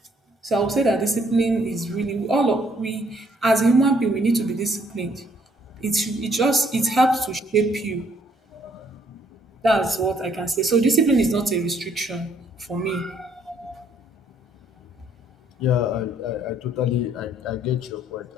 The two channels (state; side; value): normal; both; correlation 0.66